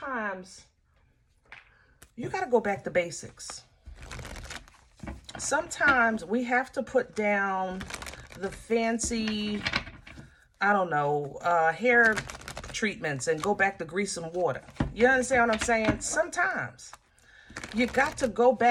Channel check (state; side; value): identical; both; correlation 1.00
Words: you got to go back to basics. Sometimes we have to put down the fancy, I don't know, hair treatments and go back to grease and water. You understand what I'm saying? Sometimes you got to go